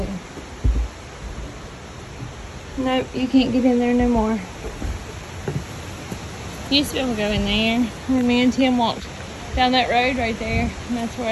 Nope, you can't get in there no more. Used to be able to go in there. And me and Tim walked down that road right there, and that's where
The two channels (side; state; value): both; identical; correlation 1.00